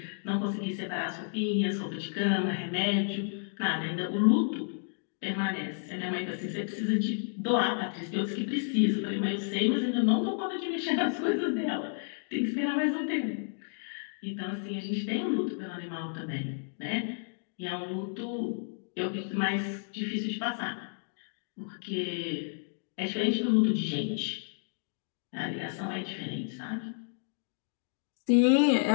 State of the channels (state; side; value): silent; right; digital silence